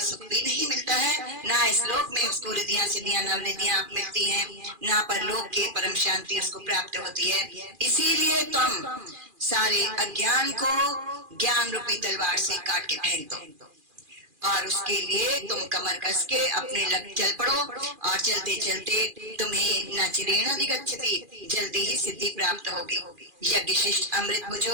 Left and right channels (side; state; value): left; late; 2.4 ms